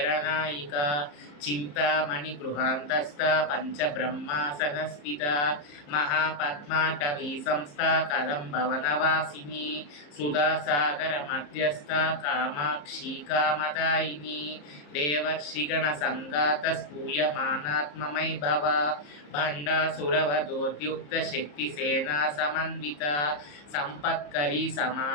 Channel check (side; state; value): right; late; 34 ms